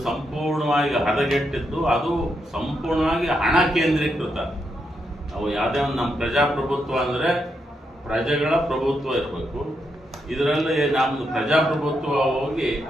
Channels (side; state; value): both; normal; correlation 0.82